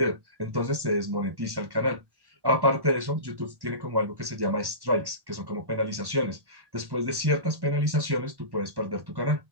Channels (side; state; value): left; late; 1.1 ms